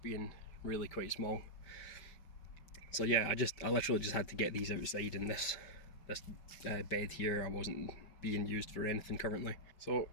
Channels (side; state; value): right; late; 5.2 ms